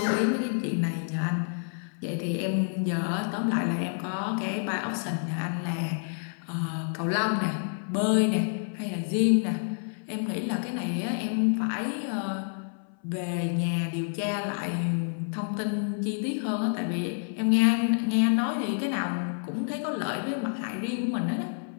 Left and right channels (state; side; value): silent; right; 58 dB below the other